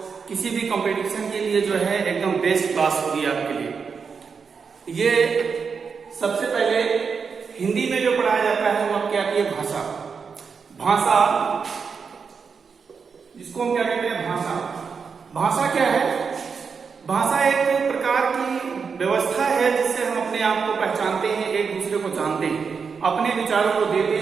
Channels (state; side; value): quieter; left; 5.7 dB